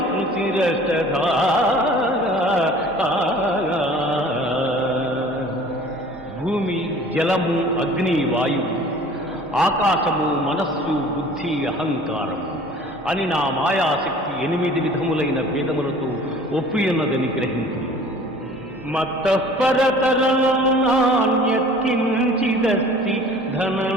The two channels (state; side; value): normal; both; correlation 0.47